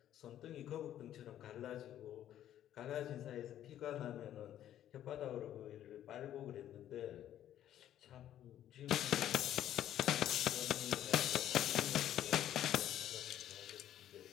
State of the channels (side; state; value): right; quieter; 11.6 dB